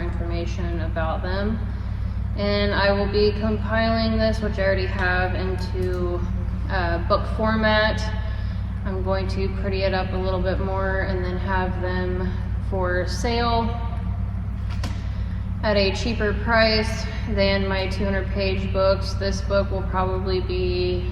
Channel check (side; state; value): both; identical; correlation 1.00